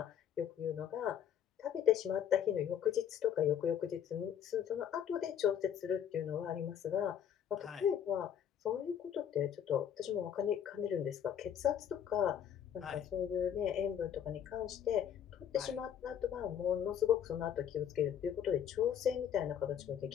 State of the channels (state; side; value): quieter; right; 9.2 dB